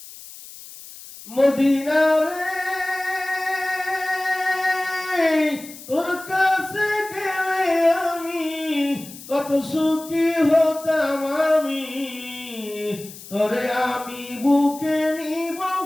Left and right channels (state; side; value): noise; left; hiss, 16 dB below the sound